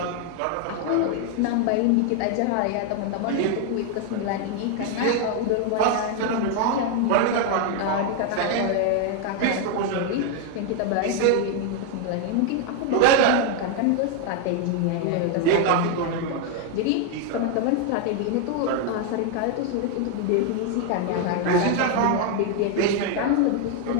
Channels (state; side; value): different; both; correlation 0.01